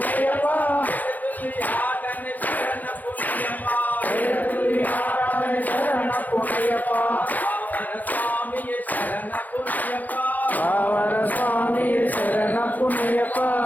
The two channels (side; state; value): right; late; 0.082 ms